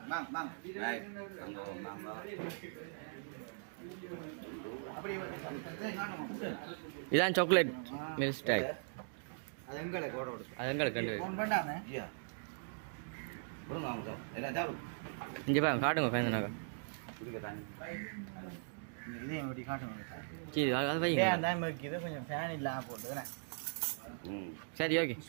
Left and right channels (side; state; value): left; silent; digital silence